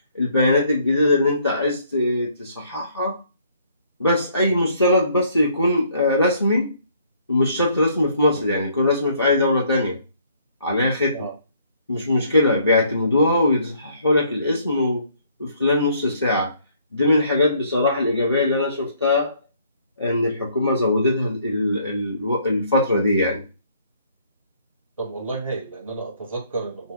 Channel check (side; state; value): both; inverted; correlation -0.64